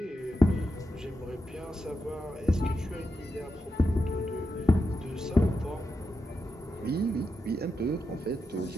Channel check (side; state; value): both; normal; correlation 0.87